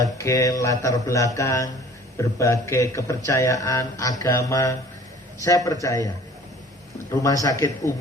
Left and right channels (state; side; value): normal; both; correlation 0.50